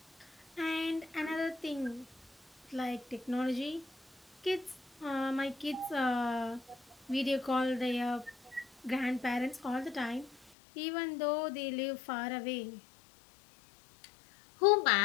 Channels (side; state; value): right; drops out; at 10.5 s